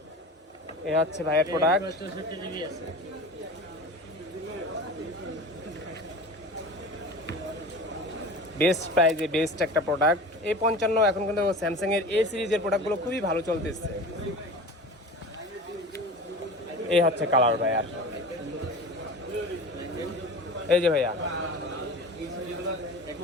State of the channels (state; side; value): normal; both; correlation 0.35